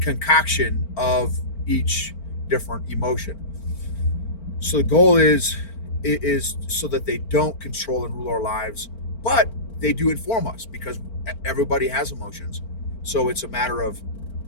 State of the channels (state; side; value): late; right; 4.4 ms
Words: of each different emotion. So the goal is so that they don't control and rule our lives, but they do inform us because everybody has emotions. So it's a matter of